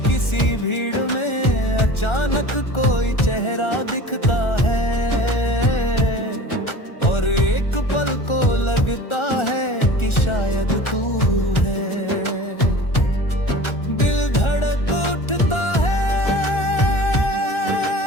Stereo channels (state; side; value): late; right; 1.4 ms